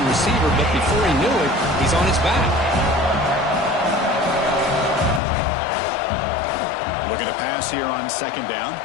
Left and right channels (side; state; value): right; drops out; at 5.2 s